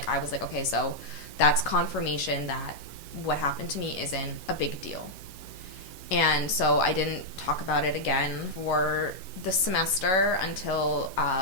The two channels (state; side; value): late; right; 11 ms